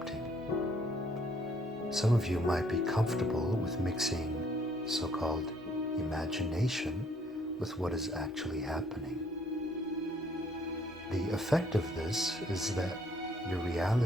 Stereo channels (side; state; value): both; normal; correlation 0.64